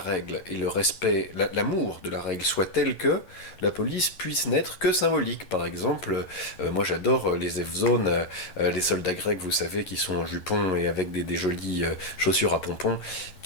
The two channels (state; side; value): late; right; 11 ms